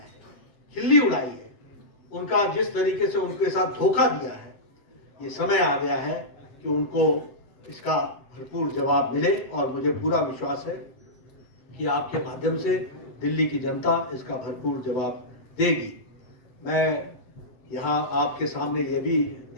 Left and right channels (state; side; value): late; right; 8.1 ms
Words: खिल्ली उड़ाई है, उनका जिस तरीके से उनके साथ धोखा दिया है। ये समय आ गया है कि उनको इसका भरपूर जवाब मिले और मुझे पूरा विश्वास है कि आपके माध्यम से दिल्ली की जनता इसका भरपूर जवाब देगी। मैं यहाँ आपके सामने ये भी